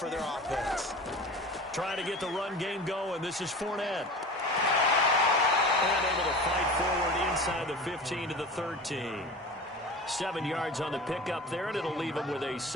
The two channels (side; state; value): both; normal; correlation 0.35